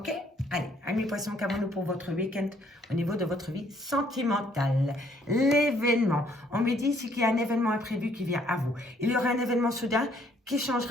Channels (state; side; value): normal; both; correlation 0.65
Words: Allez, amis Poissons, qu'avons-nous pour votre week-end au niveau de votre vie sentimentale? L'événement. On me dit ici qu'il y a un événement imprévu qui vient à vous. Il y aura un événement soudain qui